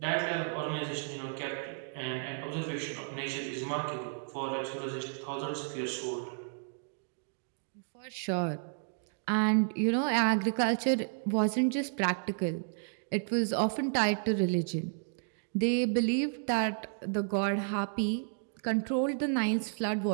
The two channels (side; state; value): left; silent; digital silence